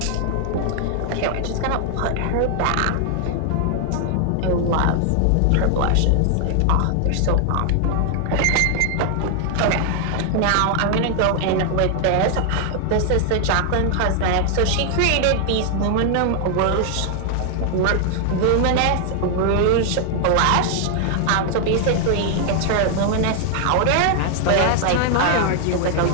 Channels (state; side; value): different; both; correlation 0.00